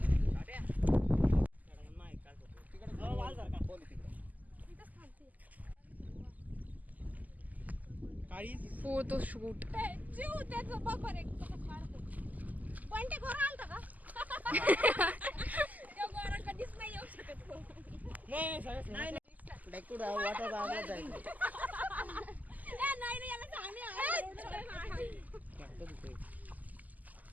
Photo shoot. जीव त्याचं बघ एक पण ते घोर आलता का? त्या घोरा कधीच नाही येऊ शकत. नाही वाटत आवाज आहे. नाही याला सांगणे.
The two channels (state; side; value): late; left; 0.079 ms